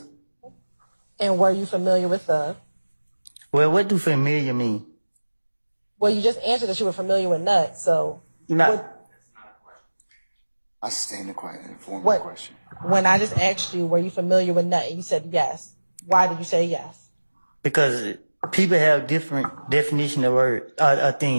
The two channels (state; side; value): inverted; both; correlation -1.00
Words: And were you familiar with Thug? Well, what do familiar mean? Well, you just answered that you were familiar with Nut, so... I sustain the question. When I just asked you, were you familiar with Nut, and you said yes. Why did you say yes? Because people have different definition of words,